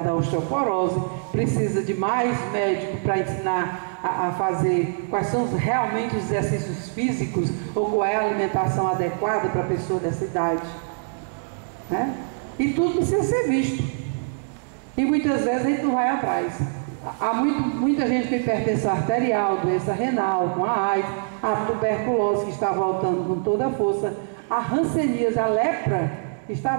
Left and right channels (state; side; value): silent; left; digital silence